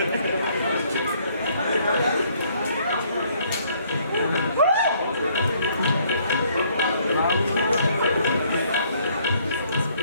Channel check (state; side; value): inverted; both; correlation -0.64